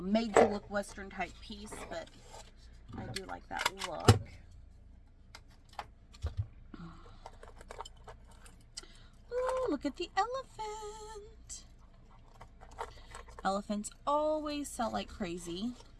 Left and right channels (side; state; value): both; identical; correlation 1.00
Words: to look Western type piece, but I do like that look. Ooh, look at the elephant. Elephants always sell like crazy.